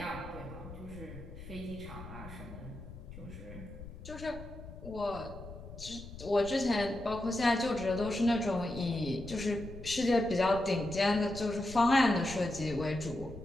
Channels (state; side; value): noise; left; rumble, 13 dB below the sound